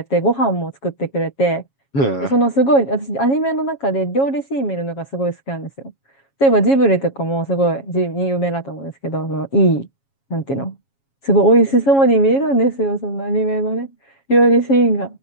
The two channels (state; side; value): late; right; 7.3 ms